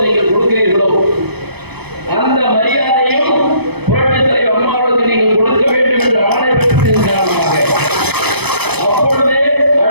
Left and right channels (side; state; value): left; late; 0.98 ms